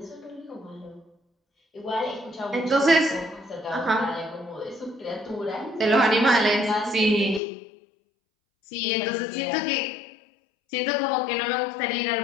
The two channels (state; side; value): drops out; right; at 7.4 s